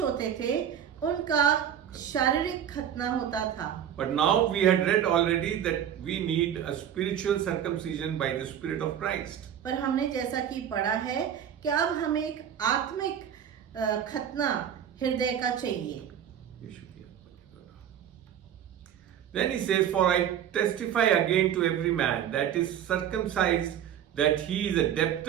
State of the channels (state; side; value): quieter; left; 9.4 dB